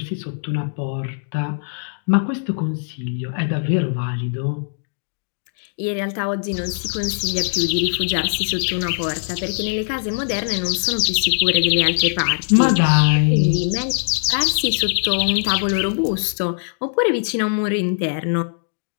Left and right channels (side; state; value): right; silent; digital silence